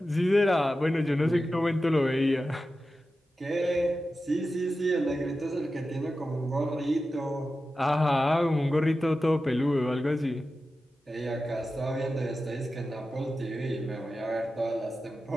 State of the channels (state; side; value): normal; both; correlation 0.93